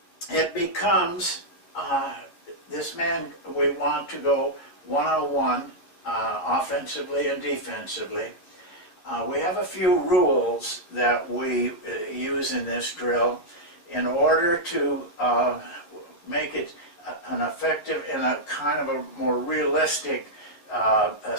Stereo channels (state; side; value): late; right; 11 ms